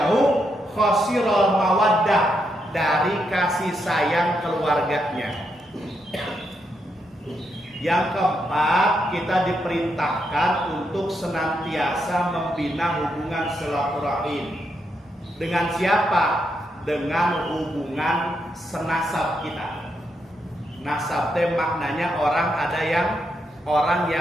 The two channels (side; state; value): both; normal; correlation 0.80